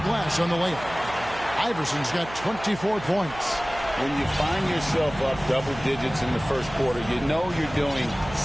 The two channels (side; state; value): right; noise; hum, 14 dB below the sound